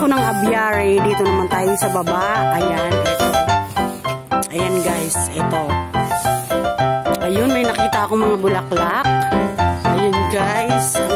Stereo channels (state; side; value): identical; both; correlation 1.00